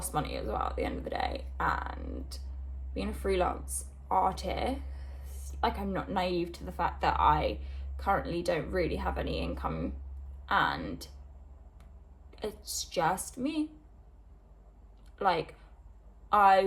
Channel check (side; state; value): both; identical; correlation 1.00